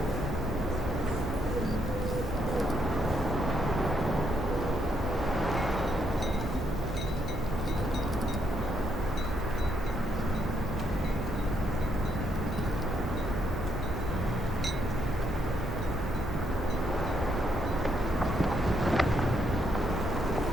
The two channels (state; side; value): normal; both; correlation 0.76